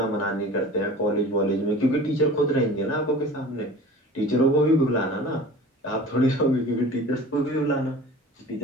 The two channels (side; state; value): both; normal; correlation 0.40